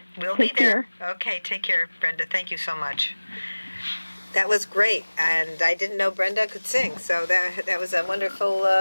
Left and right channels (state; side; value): inverted; both; correlation -1.00